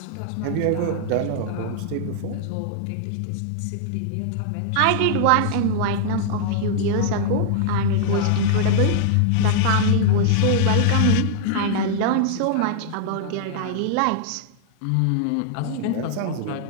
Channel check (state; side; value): different; both; correlation -0.01